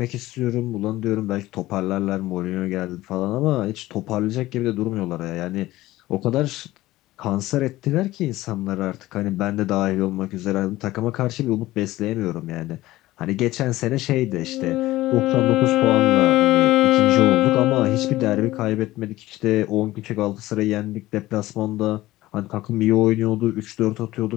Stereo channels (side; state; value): right; quieter; 17.0 dB